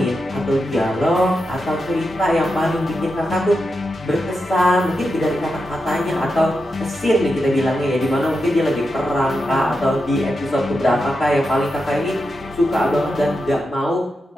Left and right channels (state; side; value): normal; both; correlation 0.88